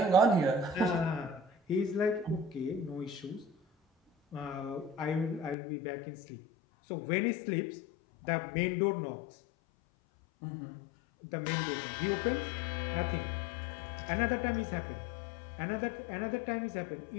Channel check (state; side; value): drops out; right; at 5.6 s